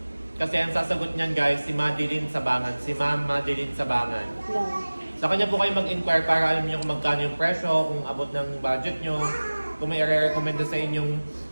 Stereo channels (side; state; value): both; inverted; correlation -1.00